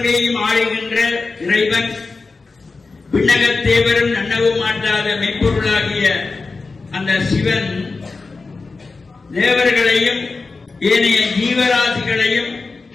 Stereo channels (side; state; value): right; quieter; 4.0 dB